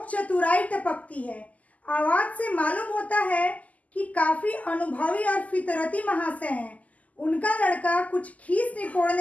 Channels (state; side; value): late; right; 0.074 ms